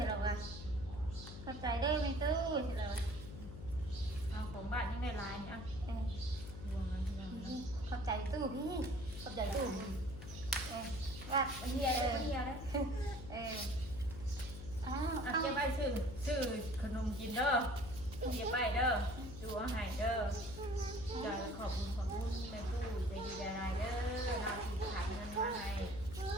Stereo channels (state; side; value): noise; left; hum, 10 dB below the sound